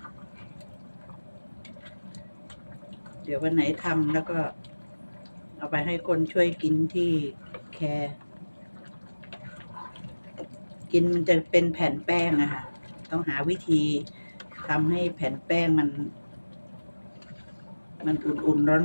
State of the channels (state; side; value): inverted; both; correlation -1.00